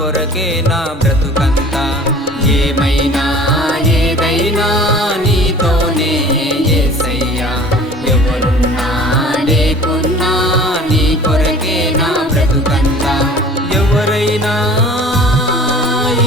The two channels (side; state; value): both; normal; correlation 0.45